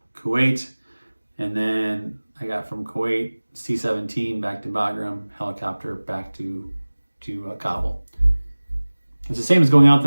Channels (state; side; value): inverted; both; correlation -1.00